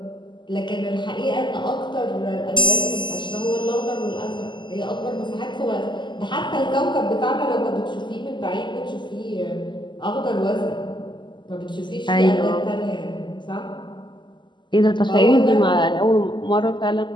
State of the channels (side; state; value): right; late; 0.22 ms